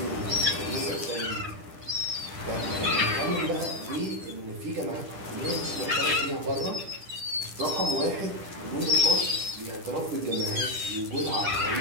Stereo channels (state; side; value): late; left; 10 ms